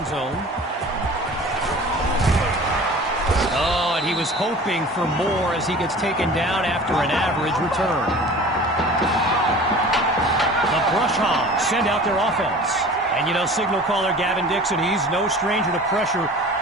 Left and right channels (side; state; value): both; normal; correlation 0.42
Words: zone. Oh, and he was hoping for more as he gets taken down after an average return. Brush Hogs send out their offense. And, you know, signal caller Gavin Dixon, he's no stranger to pressure.